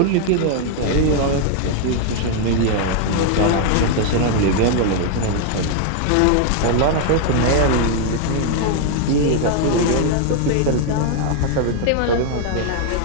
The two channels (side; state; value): both; different; correlation 0.00